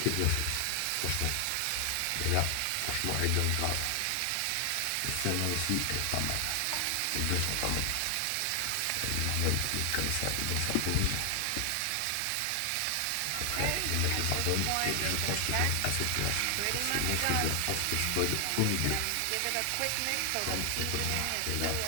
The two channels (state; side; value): different; both; correlation 0.00